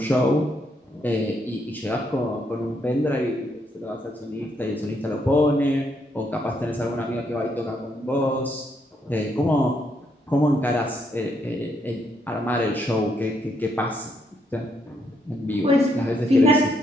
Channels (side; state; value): both; normal; correlation 0.75